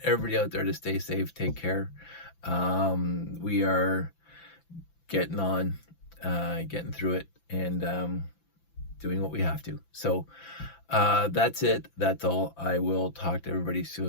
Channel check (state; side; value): late; right; 5.9 ms